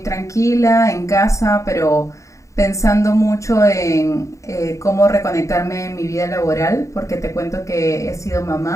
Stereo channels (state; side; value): late; right; 0.15 ms